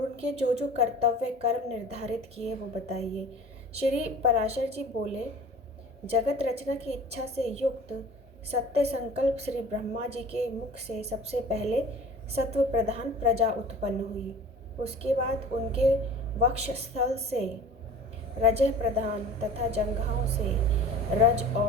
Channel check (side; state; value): both; normal; correlation 0.41